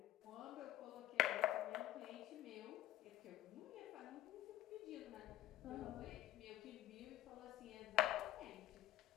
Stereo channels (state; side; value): quieter; right; 14.7 dB